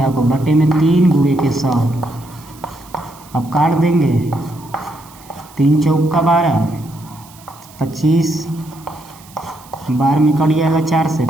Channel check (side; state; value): right; noise; hiss, 23 dB below the sound